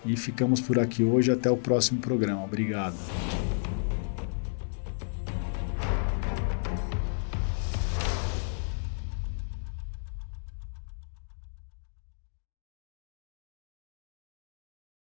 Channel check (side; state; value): right; silent; digital silence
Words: E ficamos por aqui hoje, até o próximo programa. Obrigado.